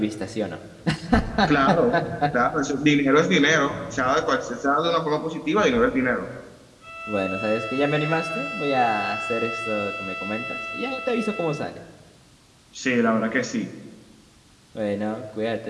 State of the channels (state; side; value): identical; both; correlation 1.00